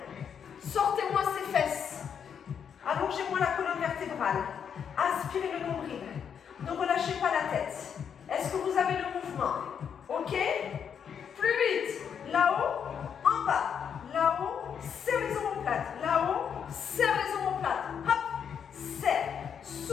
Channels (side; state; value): right; quieter; 7.6 dB